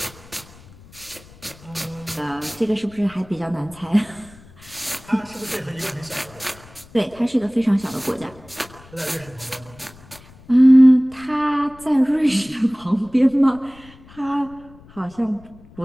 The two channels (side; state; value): left; noise; rumble, 23 dB below the sound